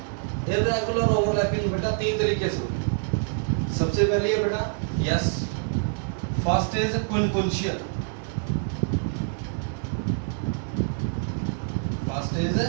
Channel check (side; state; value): left; silent; digital silence